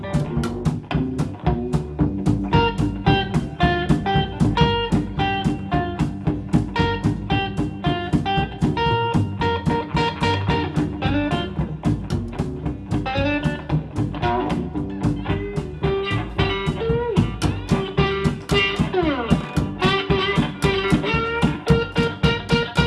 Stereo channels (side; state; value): both; identical; correlation 1.00